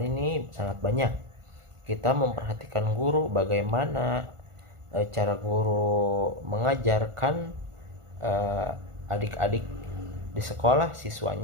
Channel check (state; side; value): late; left; 1.4 ms